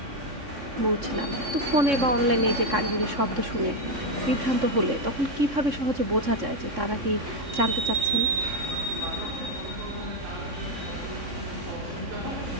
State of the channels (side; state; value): left; late; 3.6 ms